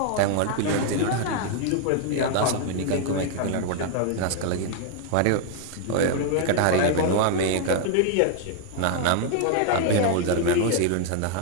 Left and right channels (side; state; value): both; different; correlation 0.00